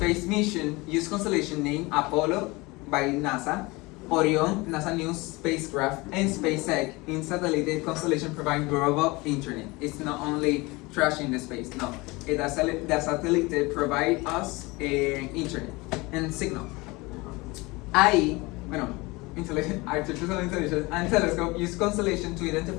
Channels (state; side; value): quieter; right; 23.7 dB